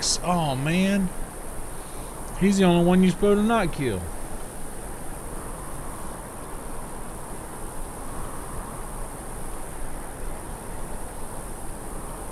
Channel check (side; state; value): both; identical; correlation 1.00